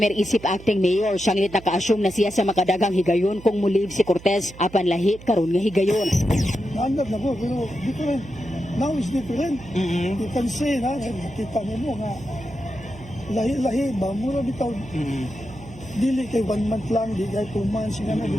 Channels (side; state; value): right; noise; hum, 18 dB below the sound